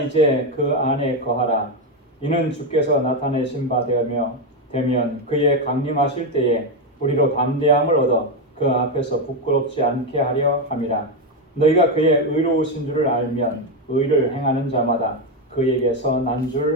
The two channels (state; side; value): normal; both; correlation 0.08